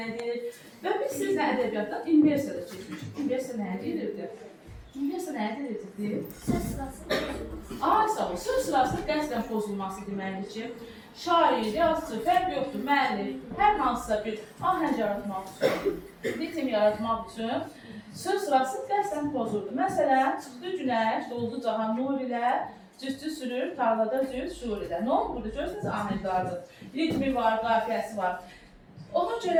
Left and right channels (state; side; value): identical; both; correlation 1.00